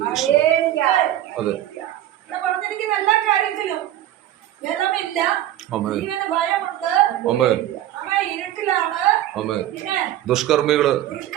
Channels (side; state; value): left; quieter; 12.7 dB